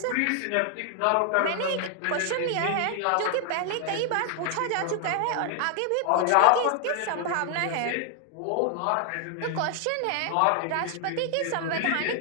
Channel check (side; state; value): both; different; correlation 0.00